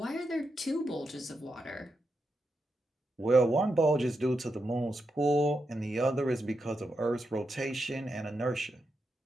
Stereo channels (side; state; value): both; normal; correlation 0.85